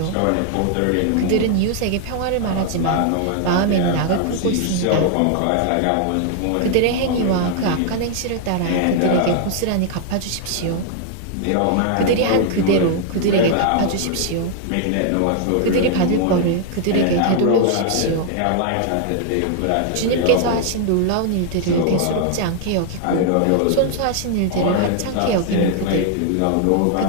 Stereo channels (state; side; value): different; both; correlation 0.00